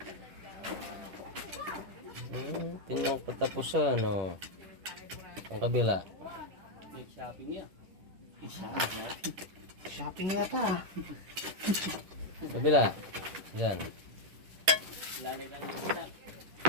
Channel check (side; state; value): left; late; 10 ms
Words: Tingnan ko katapusan, ano. Ang kabila. Shopping yata. Kabila. Yan. Yan.